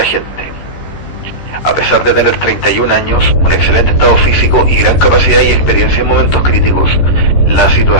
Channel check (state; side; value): late; right; 13 ms